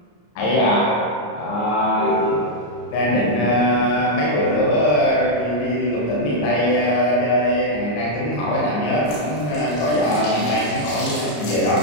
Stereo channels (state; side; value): late; right; 34 ms